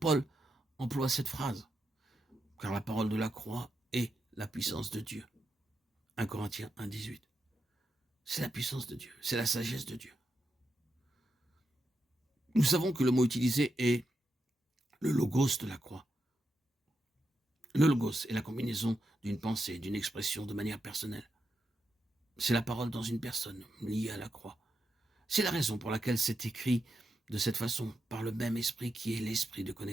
emploie cette phrase, car la parole de la croix est la puissance de Dieu. 1 Corinthiens 1, 18. C'est la puissance de Dieu, c'est la sagesse de Dieu. Nous savons que le mot utilisé est le logos de la croix. Le logos est la combinaison d'une pensée, d'une expression de manière personnelle. C'est la parole dans une personne liée à la croix. C'est la raison pour laquelle c'est écrit de cette façon, par le même esprit qui est l'esprit de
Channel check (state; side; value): normal; both; correlation 0.85